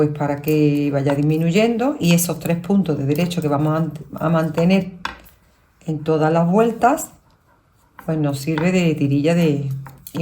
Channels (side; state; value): both; identical; correlation 1.00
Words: para que vaya disminuyendo y esos 3 puntos de derecho que vamos a mantener en todas las vueltas, pues nos sirve de tirilla